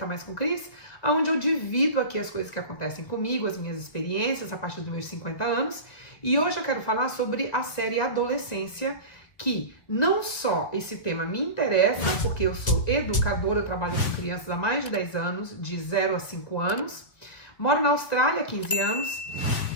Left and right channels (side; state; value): right; late; 1.9 ms